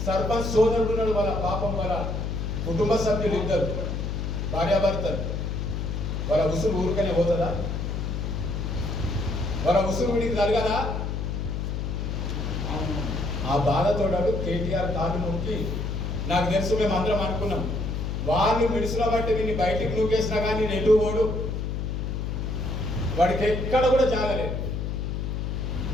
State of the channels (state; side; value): noise; left; hum, 2 dB below the sound